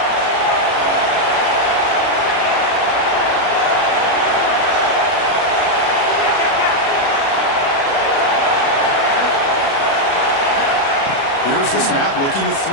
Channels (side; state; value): right; late; 36 ms